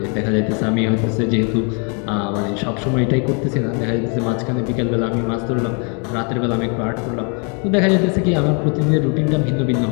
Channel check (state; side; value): quieter; right; 37.2 dB